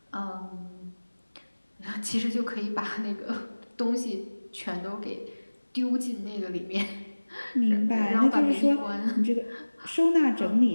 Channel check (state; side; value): inverted; both; correlation -1.00